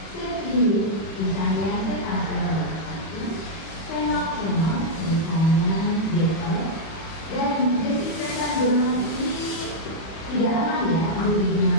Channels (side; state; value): right; late; 31 ms